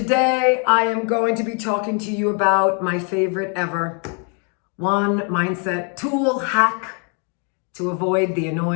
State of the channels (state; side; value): quieter; right; 38.7 dB